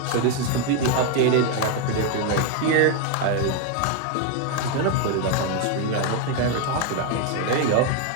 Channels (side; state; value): both; different; correlation 0.01